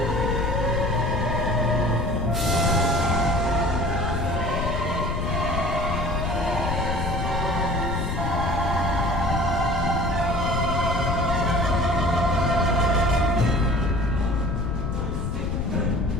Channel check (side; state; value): left; noise; rumble, 2 dB below the sound